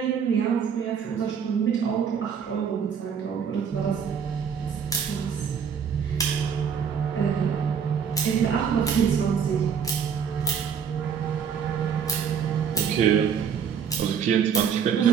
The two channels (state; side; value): quieter; left; 7.3 dB